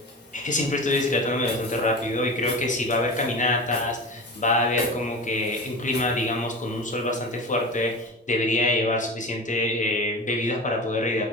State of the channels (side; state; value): both; normal; correlation 0.31